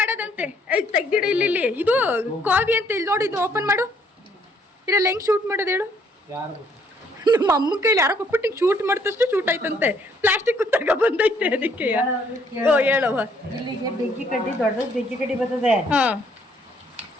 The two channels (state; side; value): normal; both; correlation 0.66